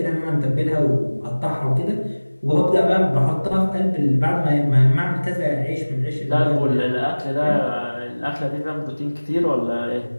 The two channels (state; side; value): inverted; both; correlation -1.00